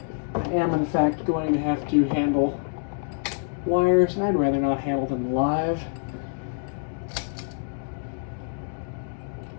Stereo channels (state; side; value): silent; right; digital silence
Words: I am in fact going to have to handle wires, and I'd rather not handle them live.